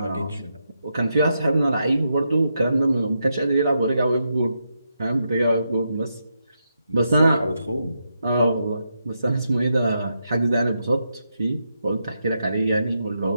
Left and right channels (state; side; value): inverted; both; correlation -0.84